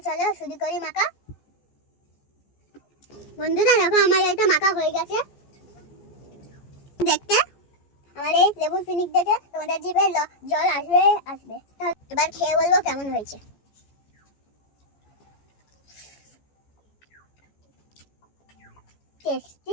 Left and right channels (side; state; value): right; late; 14 ms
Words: চলো শুরু করি মাখা। বন্ধুরা দেখো, আমার এটা মাখা হয়ে গেছে। দেখতে আমার এই লেবুর পিনিক দেখে তোমাদের জিভে জল আসবে আসবে। এবার খেয়ে বলবো কেমন হয়েছে।